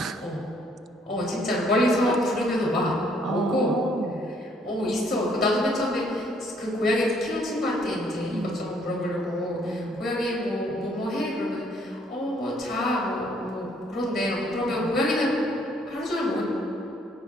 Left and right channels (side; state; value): both; normal; correlation 0.65